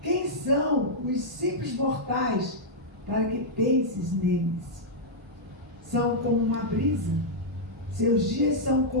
Quem são os simples mortais? Para que penses neles. São como uma brisa. Seus dias são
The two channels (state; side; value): normal; both; correlation -0.08